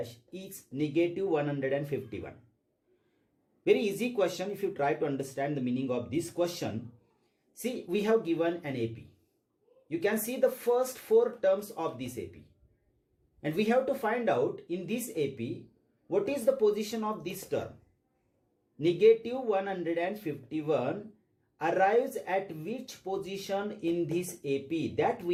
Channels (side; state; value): both; identical; correlation 1.00